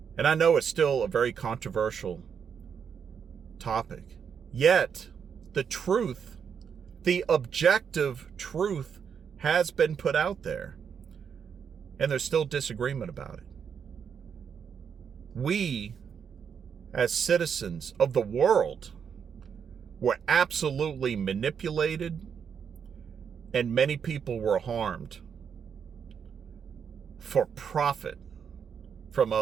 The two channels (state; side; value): quieter; left; 7.1 dB